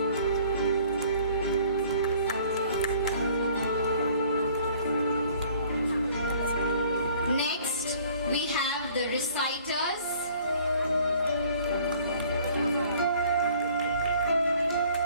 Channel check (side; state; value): both; inverted; correlation -0.55